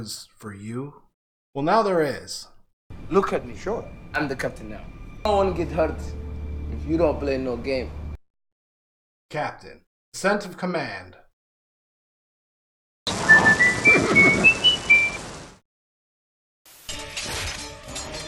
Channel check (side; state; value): both; identical; correlation 1.00